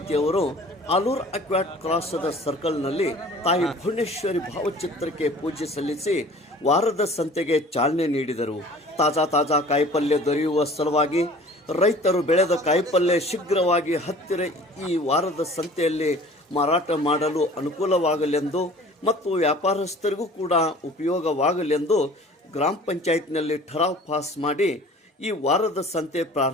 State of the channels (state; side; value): normal; both; correlation 0.47